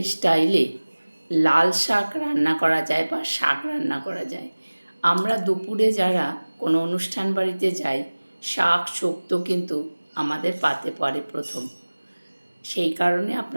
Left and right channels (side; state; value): both; inverted; correlation -1.00